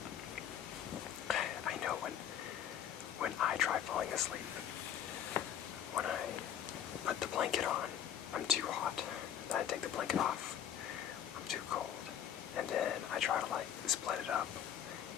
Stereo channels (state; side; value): quieter; right; 9.6 dB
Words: I know when I try falling asleep, when I put the blanket on, I'm too hot. Then I take the blanket off, I'm too cold. And then I try to split it up,